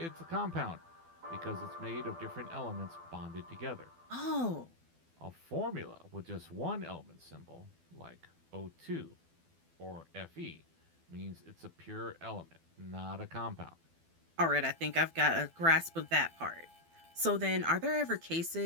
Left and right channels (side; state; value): left; late; 12 ms